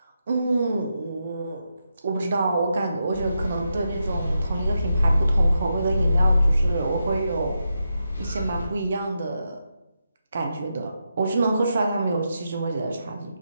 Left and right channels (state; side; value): inverted; both; correlation -0.85